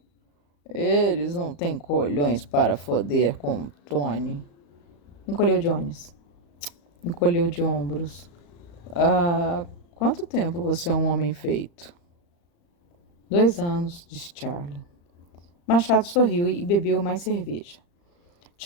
Eles não têm colhões para foder com Tony. Encolheu de ombros. Há quanto tempo você é um homem feito? 2 anos, disse Charlie. Machado sorriu e bebeu mais cerveja.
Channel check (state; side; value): late; right; 35 ms